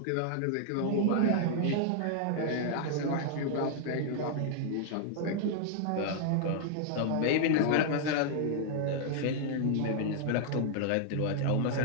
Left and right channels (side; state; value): both; different; correlation 0.00